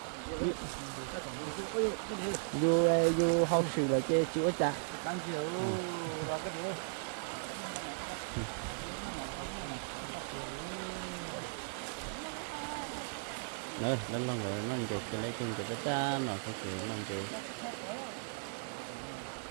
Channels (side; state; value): left; silent; digital silence